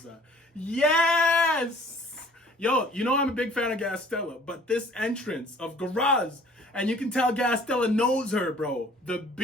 Yes! Yo, you know I'm a big fan of Gastella, but this entrance of Garas, and you can tell Gastella knows her, bro. The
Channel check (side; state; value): both; normal; correlation 0.53